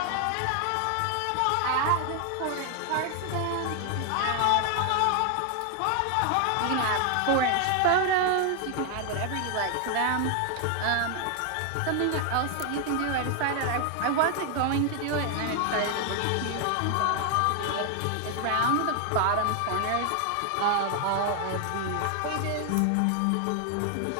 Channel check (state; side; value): different; both; correlation 0.00